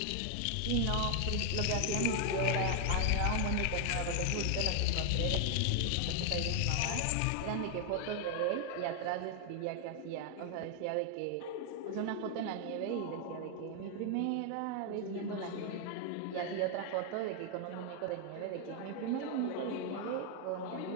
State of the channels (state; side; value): different; both; correlation 0.00